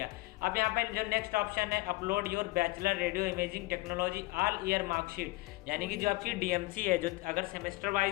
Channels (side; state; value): right; quieter; 20.6 dB